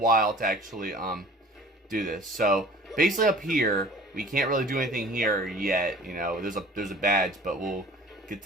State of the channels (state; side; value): normal; both; correlation 0.46